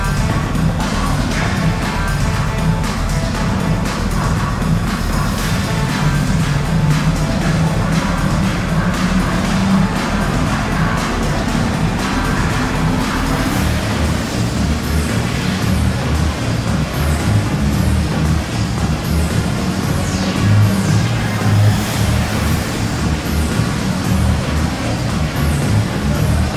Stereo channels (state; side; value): identical; both; correlation 1.00